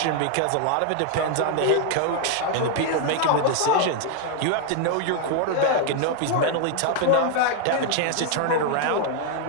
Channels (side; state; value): both; different; correlation 0.00